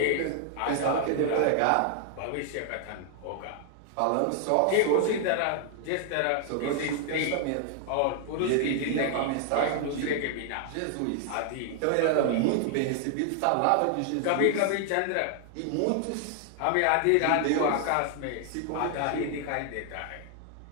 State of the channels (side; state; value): both; different; correlation 0.00